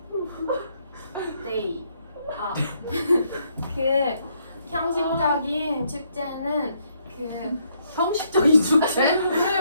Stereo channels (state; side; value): inverted; both; correlation -0.72